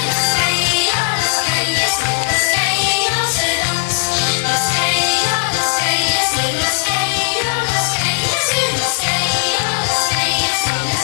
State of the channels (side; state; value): right; silent; digital silence